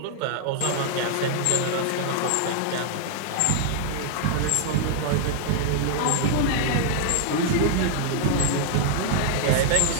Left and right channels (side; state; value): both; different; correlation -0.01